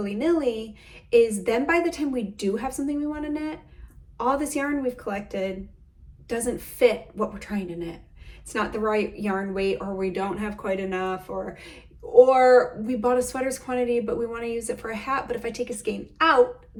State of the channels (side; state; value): both; identical; correlation 1.00